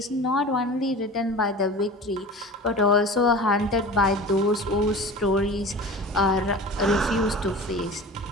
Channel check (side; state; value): both; normal; correlation 0.36